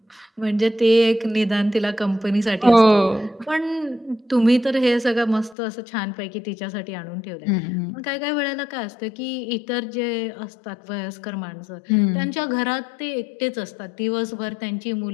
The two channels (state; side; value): drops out; right; at 5.6 s